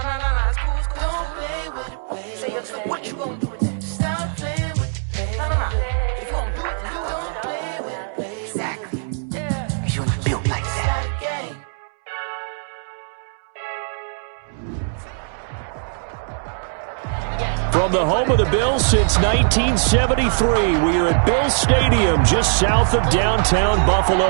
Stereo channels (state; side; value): silent; left; digital silence